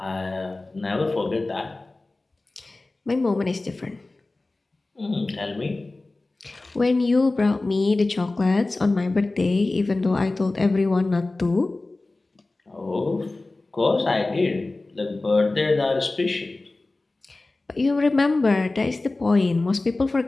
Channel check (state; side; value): quieter; right; 3.1 dB